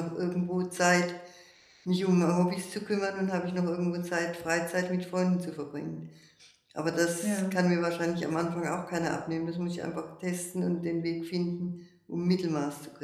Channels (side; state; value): both; identical; correlation 1.00